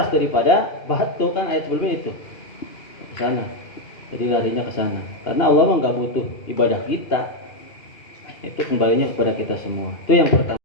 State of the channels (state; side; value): late; right; 2.8 ms